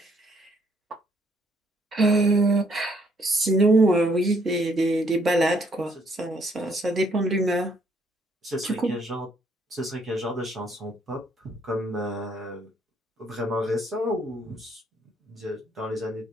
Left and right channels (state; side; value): normal; both; correlation 0.68